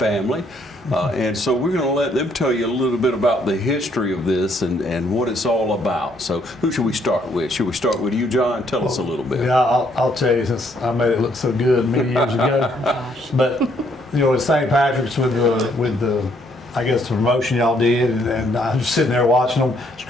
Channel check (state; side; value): normal; both; correlation 0.69